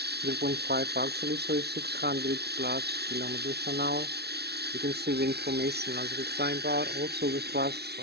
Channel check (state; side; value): late; left; 0.48 ms